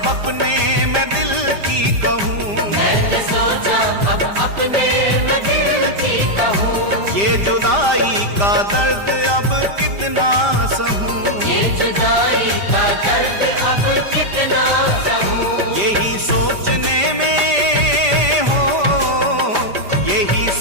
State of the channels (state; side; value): late; left; 5.0 ms